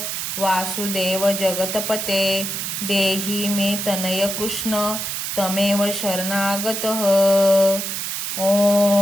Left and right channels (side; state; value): right; noise; hiss, 3 dB below the sound